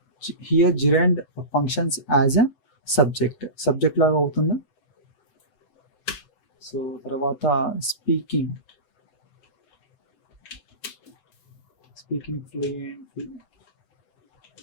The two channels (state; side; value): late; right; 7.9 ms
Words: Here gerund functions as a subject లాగా అవుతుందా? సో తర్వాత speaking fluently.